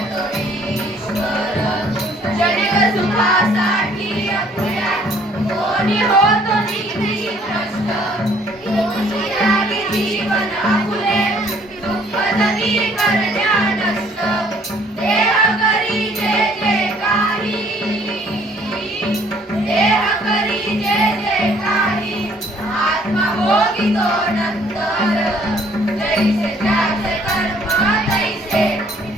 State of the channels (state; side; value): normal; both; correlation 0.60